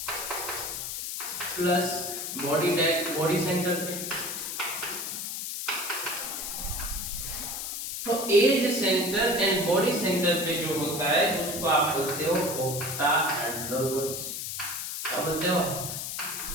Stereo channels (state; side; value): noise; left; hiss, 4 dB below the sound